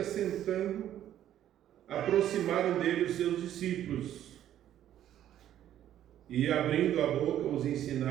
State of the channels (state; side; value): quieter; left; 11.5 dB